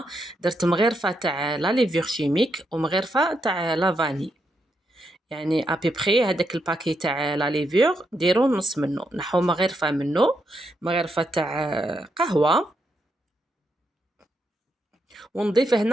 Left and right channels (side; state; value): both; normal; correlation 0.80